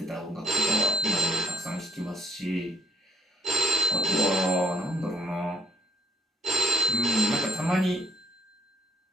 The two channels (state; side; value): normal; both; correlation 0.64